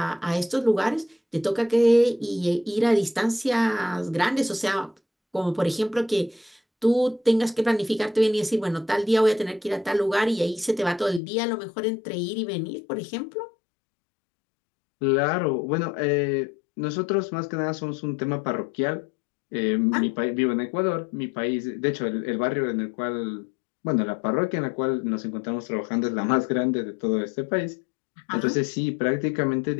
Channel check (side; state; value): right; drops out; at 11.2 s